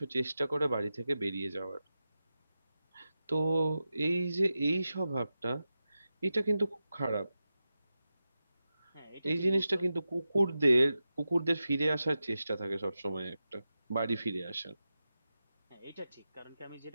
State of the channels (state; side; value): inverted; both; correlation -0.92